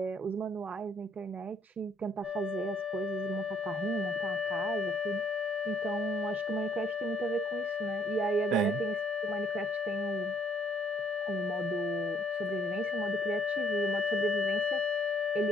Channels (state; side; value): normal; both; correlation 0.66